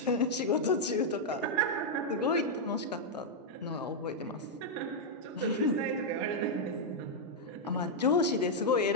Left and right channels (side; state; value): both; normal; correlation -0.03